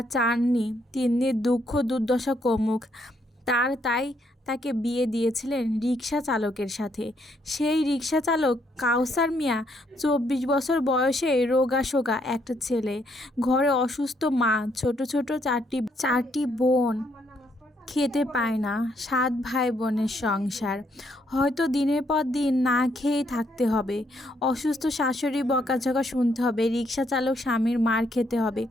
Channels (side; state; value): both; normal; correlation 0.73